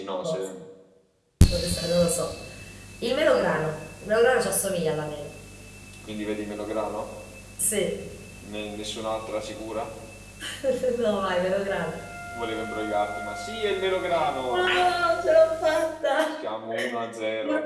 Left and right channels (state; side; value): identical; both; correlation 1.00